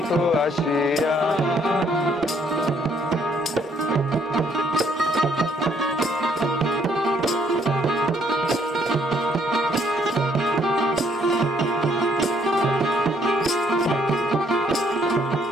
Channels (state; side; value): normal; both; correlation 0.67